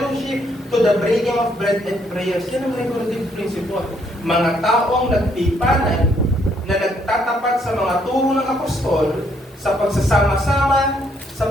to the breaking of bread and prayers. Yan ang regulative principle. Mga taong nagtipanan na nagtatapat sa mga turo ng apostol sa pagsasama-sama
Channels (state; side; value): normal; both; correlation 0.70